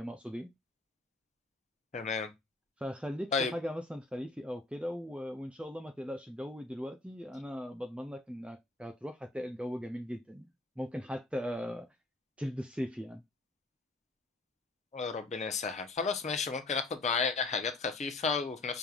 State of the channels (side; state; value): right; quieter; 3.1 dB